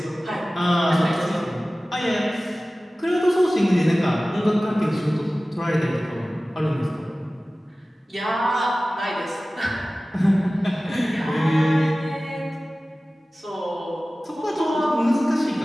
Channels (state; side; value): normal; both; correlation 0.97